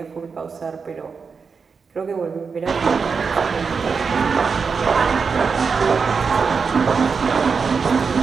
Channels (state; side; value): quieter; left; 5.4 dB